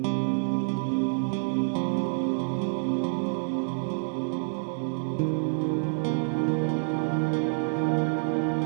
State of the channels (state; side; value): silent; left; digital silence